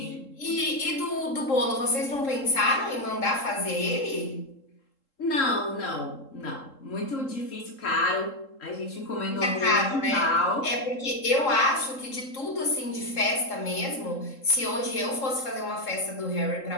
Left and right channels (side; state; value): right; late; 3.7 ms